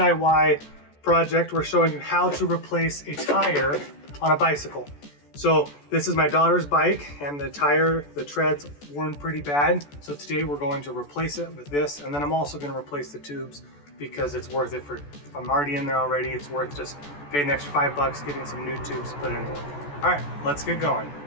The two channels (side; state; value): right; late; 14 ms